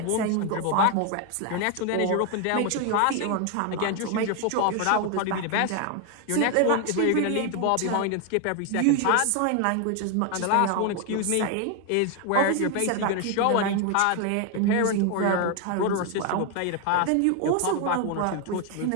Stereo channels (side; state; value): both; different; correlation 0.01